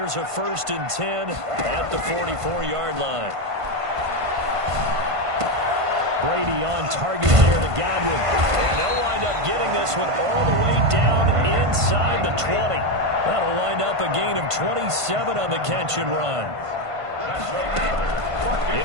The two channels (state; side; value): late; left; 1.5 ms